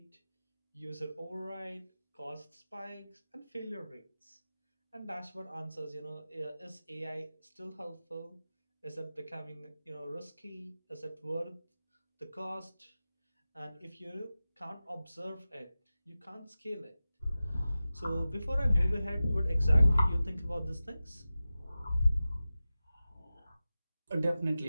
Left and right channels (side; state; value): both; inverted; correlation -0.95